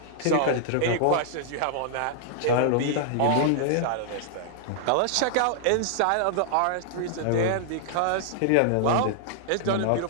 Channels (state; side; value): different; both; correlation -0.01